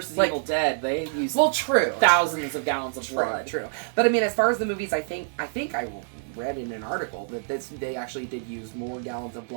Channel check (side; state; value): left; silent; 59 dB below the other